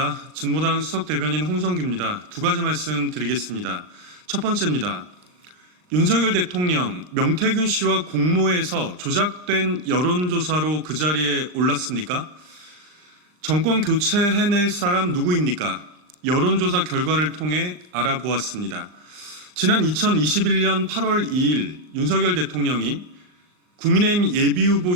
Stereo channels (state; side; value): late; left; 39 ms